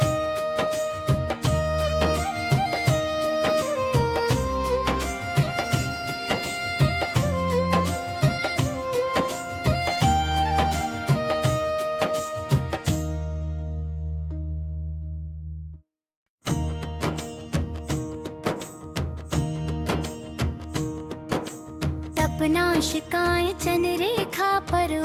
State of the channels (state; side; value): identical; both; correlation 1.00